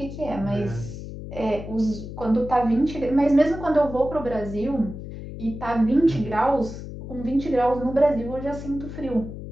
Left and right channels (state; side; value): noise; left; hum, 10 dB below the sound